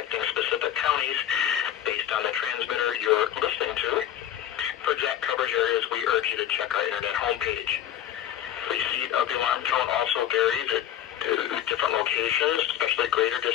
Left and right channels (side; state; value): right; quieter; 10.9 dB